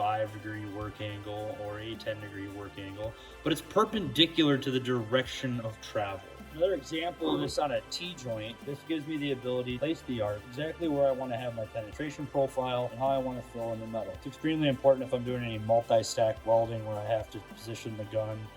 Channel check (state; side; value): identical; both; correlation 1.00